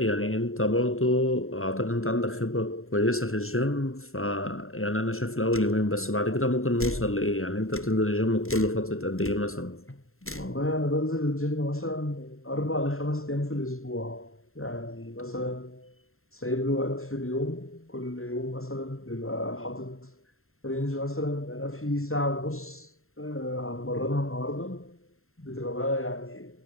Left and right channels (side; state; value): right; late; 0.62 ms